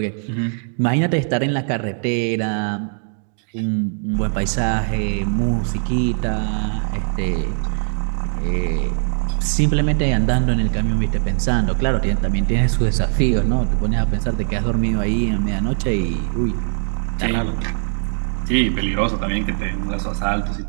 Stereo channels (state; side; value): silent; left; digital silence